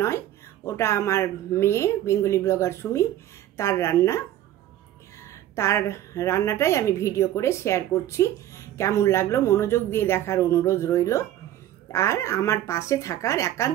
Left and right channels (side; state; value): left; quieter; 12.7 dB